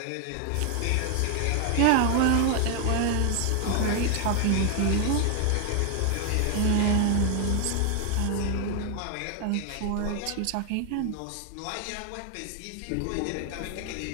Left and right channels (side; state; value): both; different; correlation 0.00